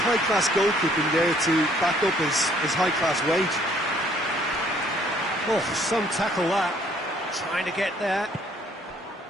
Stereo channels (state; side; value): normal; both; correlation 0.62